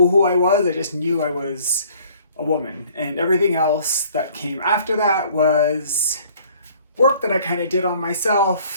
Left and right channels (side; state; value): both; inverted; correlation -0.55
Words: who I was. I just knew I was a woman, and everything else that came after that was work that I kind of did on